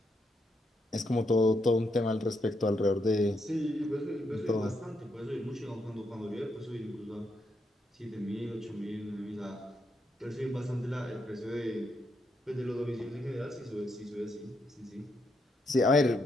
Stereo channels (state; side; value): normal; both; correlation 0.79